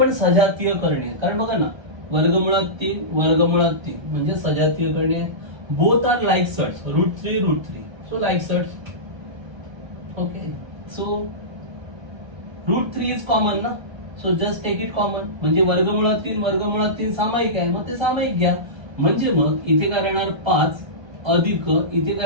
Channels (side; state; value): left; late; 1.3 ms